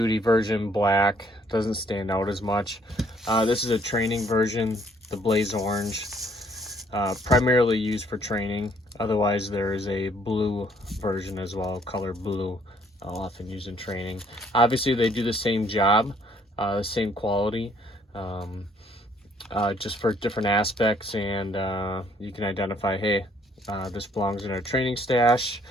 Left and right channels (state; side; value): normal; both; correlation 0.64